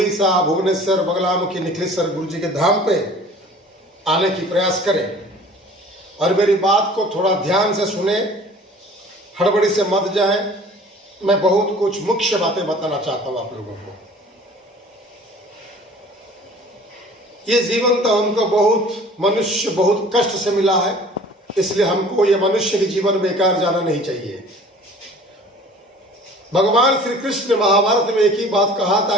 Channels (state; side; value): normal; both; correlation 0.48